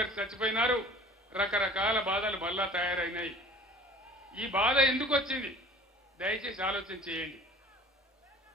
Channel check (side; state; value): both; normal; correlation 0.46